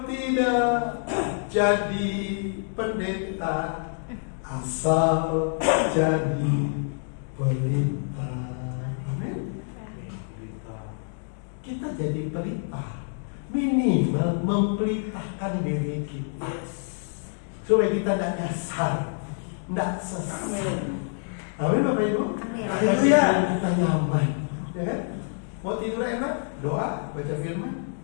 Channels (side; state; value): right; silent; digital silence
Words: tidak jadi pendeta, asal jadi pelita. Amin. Kita jadi pelita, minimal mempelitakan diri kita, supaya kita tidak nyasar, tidak sesat. Amin Bapak Ibu. Amin. Haleluya. Kita nyaman, ya kan? Mau tidur enak, doa, baca firman,